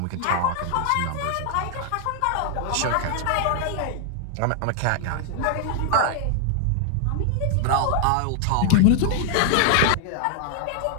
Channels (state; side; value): different; both; correlation 0.00